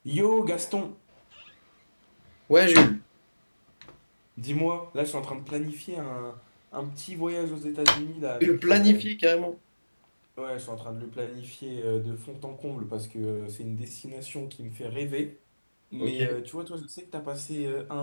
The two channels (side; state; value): both; inverted; correlation -1.00